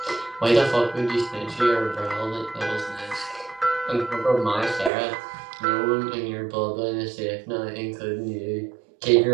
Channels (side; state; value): left; drops out; at 4.9 s